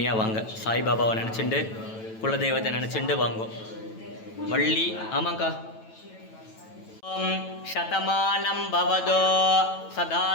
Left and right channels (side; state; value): right; late; 9.1 ms